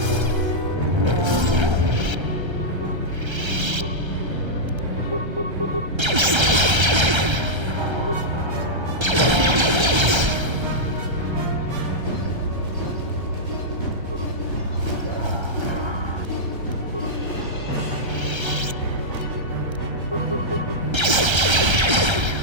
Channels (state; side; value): late; left; 1.3 ms